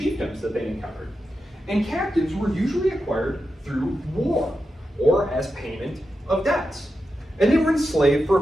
that they encountered. And captives were usually acquired through war or as payment of debts. And they were enslaved for a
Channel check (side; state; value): both; normal; correlation 0.89